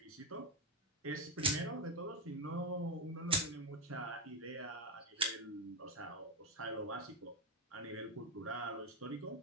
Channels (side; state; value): both; normal; correlation 0.11